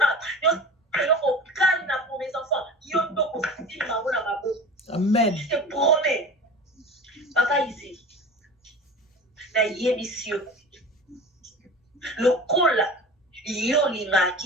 yo ko kali na pour mes enfants yo ndoko fitili ma bona mabo. Amen. Je te promets. Papa ici, na yebisio, le cola, yolinga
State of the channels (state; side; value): normal; both; correlation 0.36